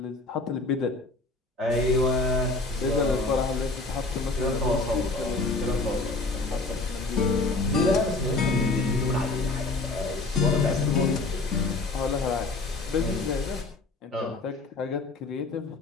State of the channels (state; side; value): quieter; right; 3.4 dB